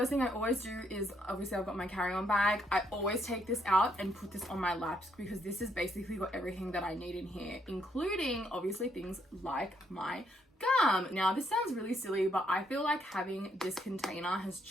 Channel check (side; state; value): both; normal; correlation 0.73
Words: thing I always do is, obviously I've got my carry-on bag. I always take this out and put this on my laps because this is basically got everything that I need in here, including obviously things like my gum. Now this sounds really silly, but I feel like having this container has